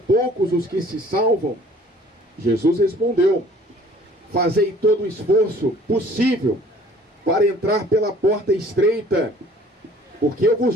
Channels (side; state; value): both; normal; correlation 0.53